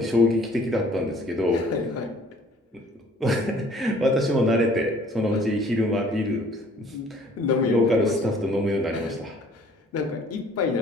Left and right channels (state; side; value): normal; both; correlation 0.55